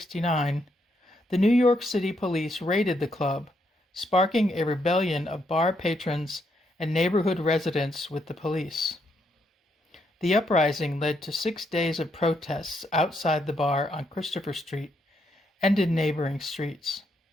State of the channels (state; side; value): normal; both; correlation 0.77